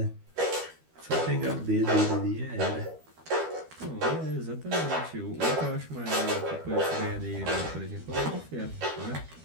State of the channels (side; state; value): left; late; 13 ms